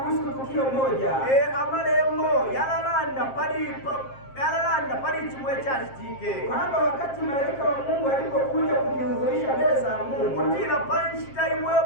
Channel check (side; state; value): right; late; 7.5 ms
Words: tukio moja amalembo yalalanda pali chimwe chachitike kwamba wakati malaika wa Mungu alipokuja kujihudhurisha mbele za Mungu, kutila panshita imwe